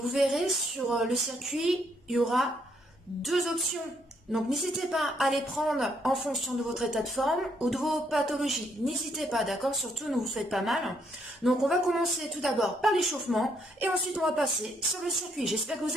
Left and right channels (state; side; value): normal; both; correlation 0.72